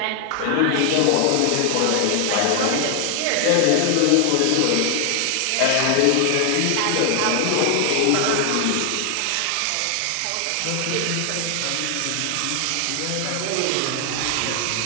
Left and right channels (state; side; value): different; both; correlation 0.00